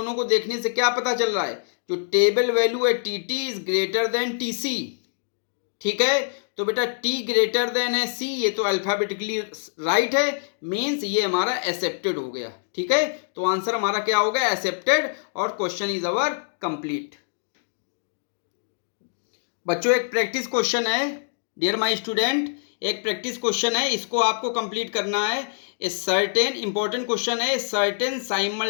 को देखने से क्या पता चल रहा है, जो टेबल वैल्यू है T T is greater than T C, ठीक है। तो बेटा टी ग्रेटर देन है सी, ये तो अल्फाबेटिकली राइट है, मीन्स ये हमारा एक्सेप्टेड हो गया, ठीक है। तो आंसर हमारा क्या हो गया, एक्सेप्टेड, और क्वेश्चन इज अवर कंप्लीट। बच्चों एक प्रैक्टिस क्वेश्चन है, डियर माय स्टूडेंट, एक प्रैक्टिस क्वेश्चन है, इसको आपको कंप्लीट करना है। ए सर्टेन इंपॉर्टेंट क्वेश्चन है, certain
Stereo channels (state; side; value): silent; right; digital silence